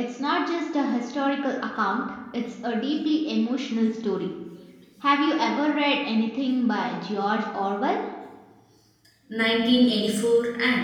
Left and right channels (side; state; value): both; identical; correlation 1.00